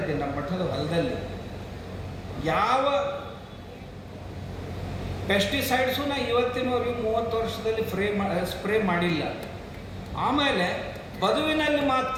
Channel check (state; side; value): identical; both; correlation 1.00